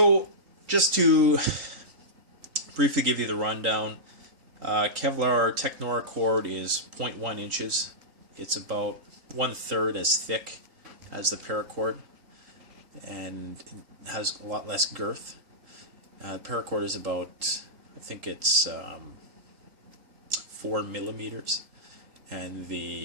just to briefly give you the rundown, Kevlar Technora cord is 0.1 inches. It's about 1/3 as thick as the paracord, and has a lot less girth. Paracord is about, I think it's 4 millimeters, and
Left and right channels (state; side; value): late; left; 3.8 ms